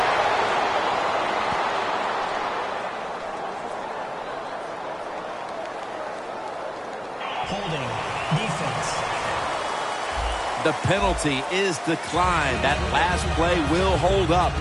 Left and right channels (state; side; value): identical; both; correlation 1.00